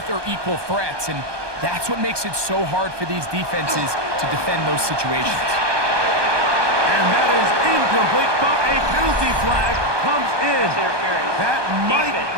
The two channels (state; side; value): late; left; 1.2 ms